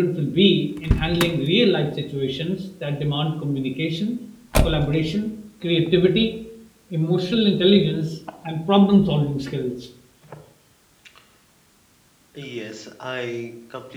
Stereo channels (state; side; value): identical; both; correlation 1.00